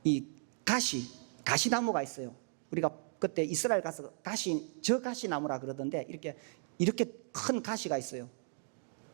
이 가시나무가 있어요. 우리가 그때 이스라엘 가서 저 가시나무라 그러던데 이렇게 큰 가시가 있어요.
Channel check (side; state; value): left; silent; 54 dB below the other